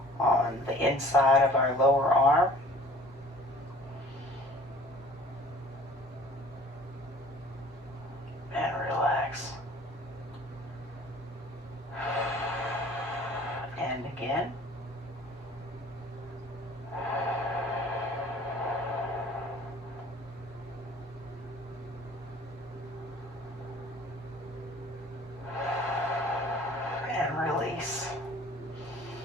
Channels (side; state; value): both; normal; correlation 0.49